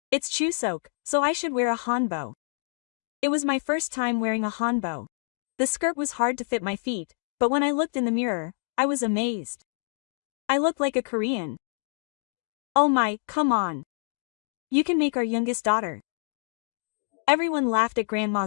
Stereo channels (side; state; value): right; silent; digital silence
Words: It's Chuseok, so I should wear a hanbok. It was my first time wearing a hanbok. The skirt was hard to fit my feet, but when I looked in the mirror, I was amazed. I looked like a Korean. Oh my, come on. You can make our youngest daughter. Everyone laughed at